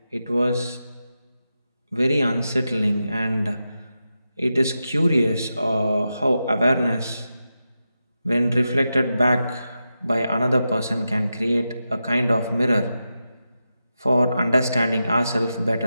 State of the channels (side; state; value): both; inverted; correlation -0.89